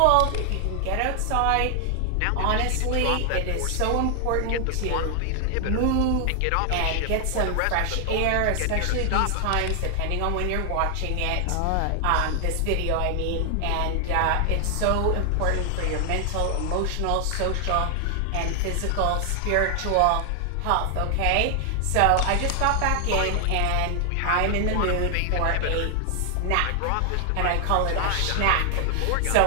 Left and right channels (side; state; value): both; different; correlation 0.00